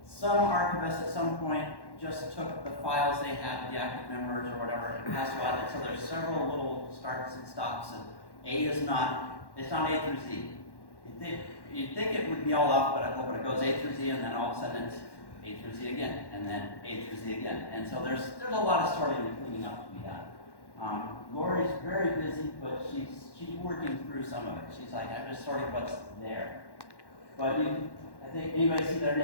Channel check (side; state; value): right; late; 1.1 ms